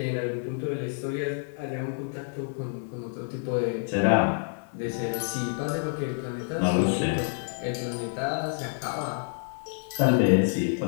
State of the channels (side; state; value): right; silent; 58 dB below the other